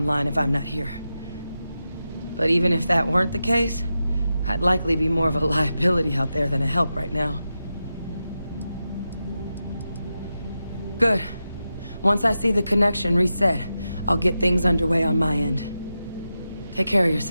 if I'm not here. But even if that weren't the case, I'd likely be more of a liability out there than a help right now. Good. Once I see the connection reset, I'll get things underway on my end. Take care of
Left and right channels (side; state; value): both; inverted; correlation -0.91